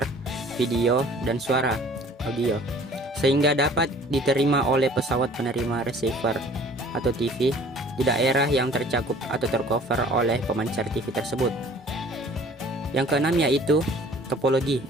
video, dan suara audio sehingga dapat diterima oleh pesawat penerima receiver atau TV di daerah yang tercakup atau tercover oleh pemancar TV tersebut. Yang keenam yaitu topologi.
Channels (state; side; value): normal; both; correlation 0.51